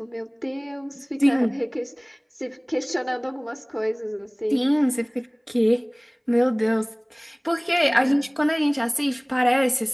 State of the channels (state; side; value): identical; both; correlation 1.00